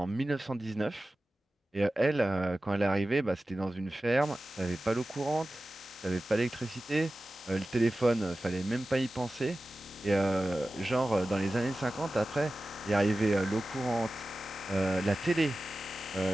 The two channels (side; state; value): both; normal; correlation 0.95